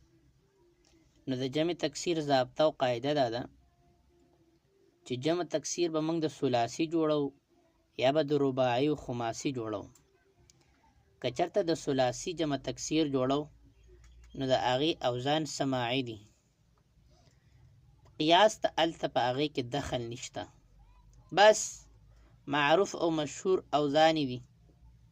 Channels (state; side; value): identical; both; correlation 1.00